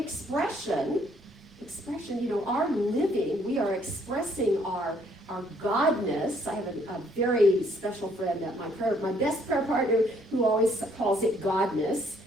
Our living, we are expressing our godness. I have a very special friend at my best prayer partner who always calls it godness.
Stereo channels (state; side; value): normal; both; correlation 0.65